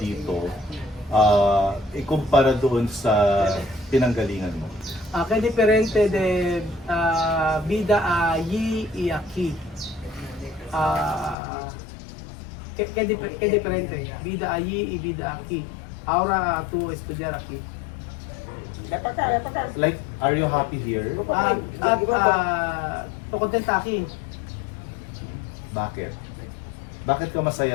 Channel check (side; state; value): right; drops out; at 11.4 s